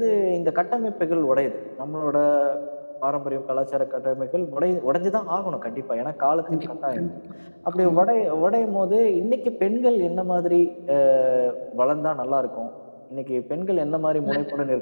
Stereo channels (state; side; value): inverted; both; correlation -1.00